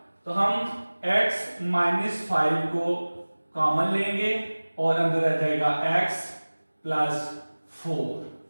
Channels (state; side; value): inverted; both; correlation -1.00